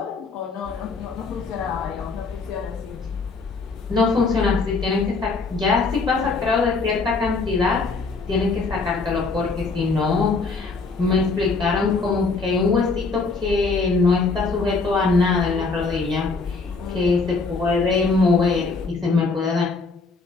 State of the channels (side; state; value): right; quieter; 4.1 dB